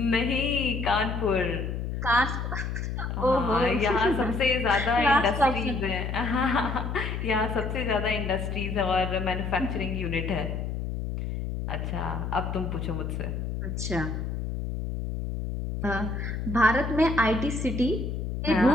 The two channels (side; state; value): left; noise; hum, 4 dB below the sound